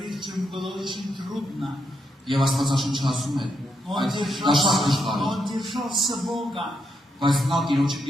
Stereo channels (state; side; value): normal; both; correlation 0.80